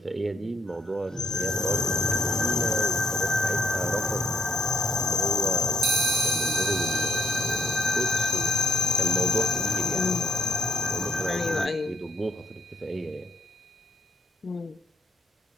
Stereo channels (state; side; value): normal; both; correlation 0.69